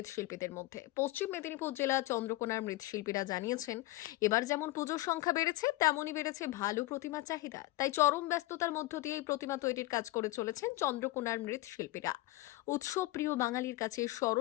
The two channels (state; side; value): quieter; right; 18.6 dB